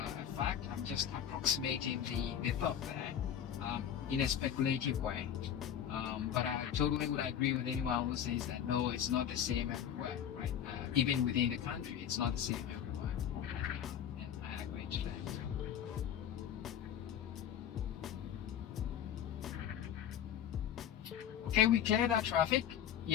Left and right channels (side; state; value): right; quieter; 9.5 dB